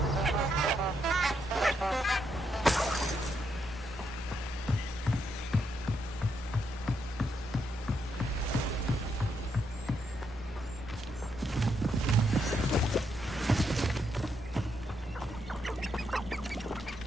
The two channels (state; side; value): normal; both; correlation 0.79